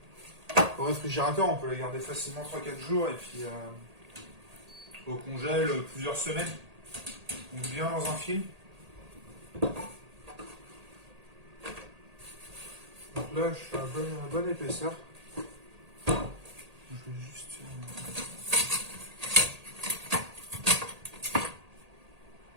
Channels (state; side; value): late; left; 1.8 ms